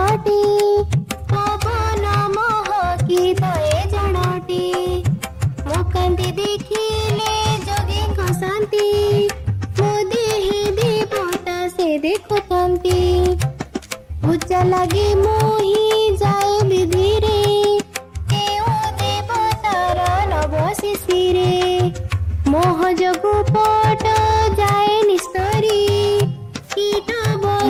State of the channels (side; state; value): both; identical; correlation 1.00